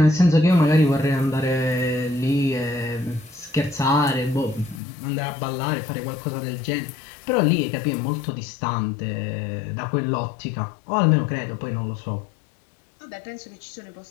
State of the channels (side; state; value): right; drops out; at 4.8 s